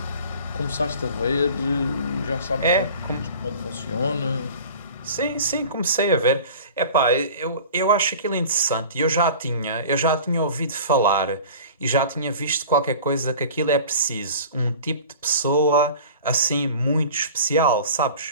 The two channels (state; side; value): inverted; both; correlation -0.40